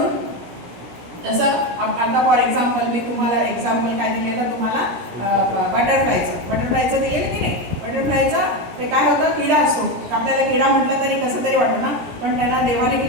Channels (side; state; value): left; late; 17 ms